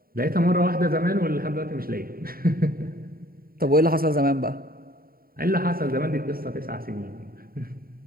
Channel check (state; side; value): late; left; 0.43 ms